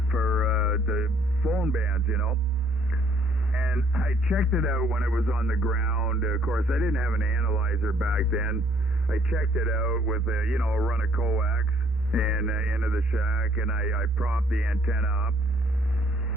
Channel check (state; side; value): normal; both; correlation 0.63